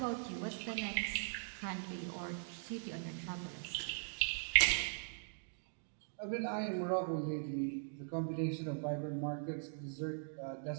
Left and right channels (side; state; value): left; silent; digital silence